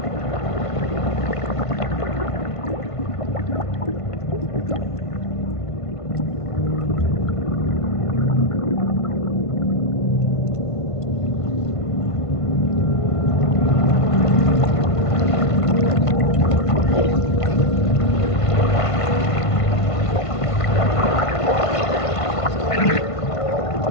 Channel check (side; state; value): right; late; 1.5 ms